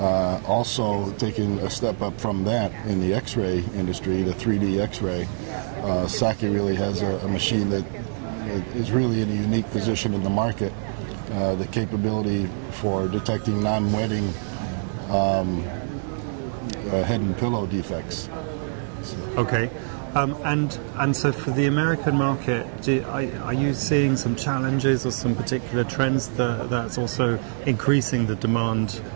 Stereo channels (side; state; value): left; silent; 56 dB below the other